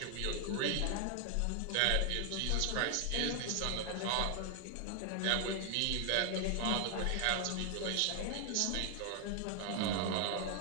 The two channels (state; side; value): different; both; correlation 0.00